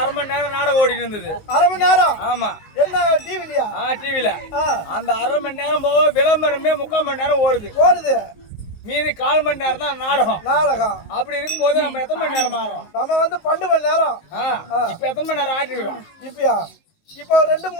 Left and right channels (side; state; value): right; late; 19 ms